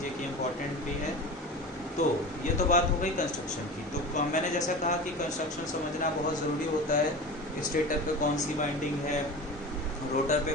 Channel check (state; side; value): normal; both; correlation 0.32